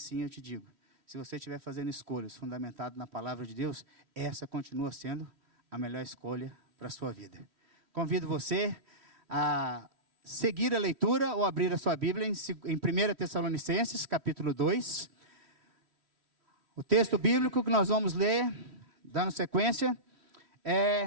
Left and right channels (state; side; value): late; left; 3.1 ms